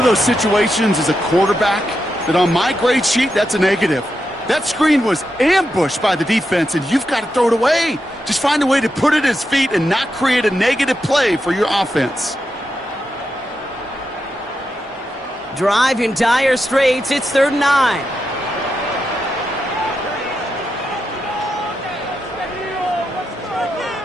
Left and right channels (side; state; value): both; normal; correlation 0.86